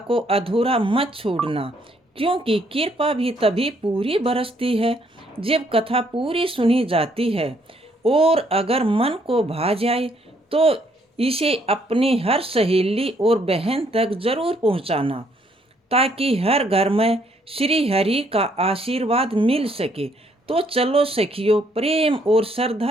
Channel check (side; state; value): both; normal; correlation 0.68